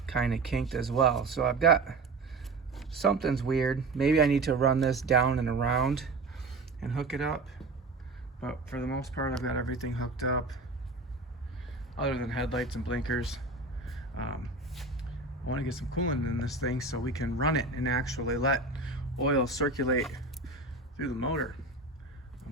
kind of kinked as well. So I've got, something's weird. Maybe I need to run this down and around and hook it up. But for the most part, I've got everything hooked up other than headlights and blinkers. I want to get some coolant in this thing so we can run it and actually let oil circulate through the motor.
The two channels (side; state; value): left; quieter; 3.5 dB